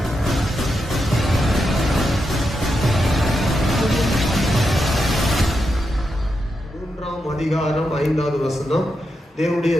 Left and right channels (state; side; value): normal; both; correlation 0.86